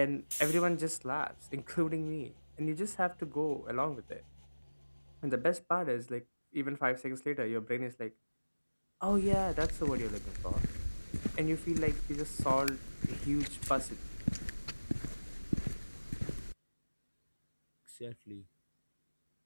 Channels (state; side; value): inverted; both; correlation -1.00